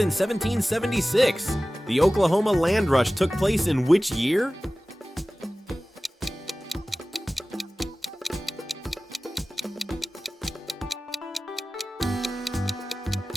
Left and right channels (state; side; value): normal; both; correlation 0.97